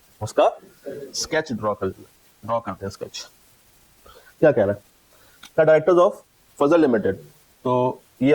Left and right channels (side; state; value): both; identical; correlation 1.00